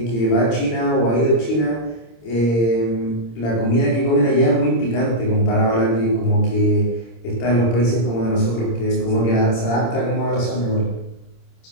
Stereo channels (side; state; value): right; late; 26 ms